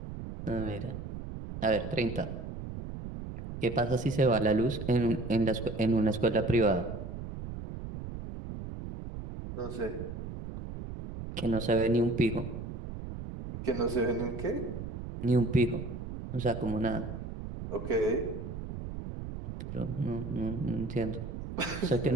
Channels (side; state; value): right; noise; rumble, 8 dB below the sound